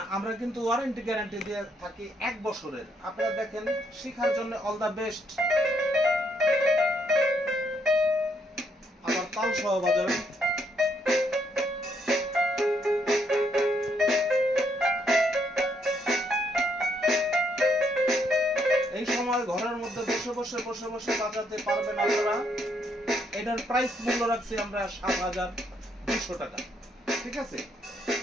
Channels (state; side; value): normal; both; correlation 0.73